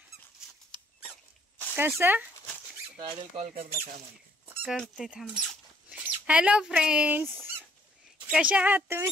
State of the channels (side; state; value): both; normal; correlation 0.66